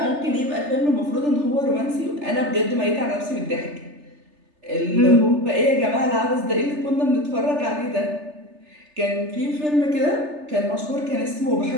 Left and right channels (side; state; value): left; late; 3.4 ms